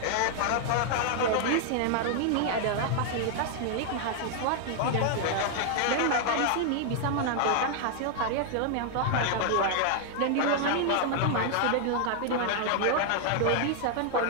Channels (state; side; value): different; both; correlation 0.00